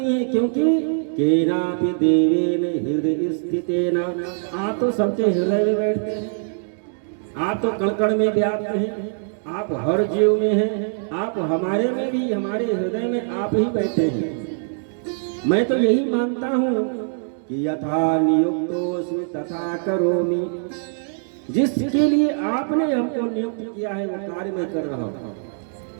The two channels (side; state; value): left; silent; digital silence